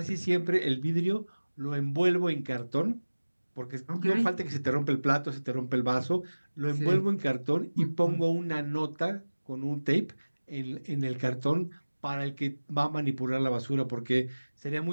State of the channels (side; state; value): both; inverted; correlation -1.00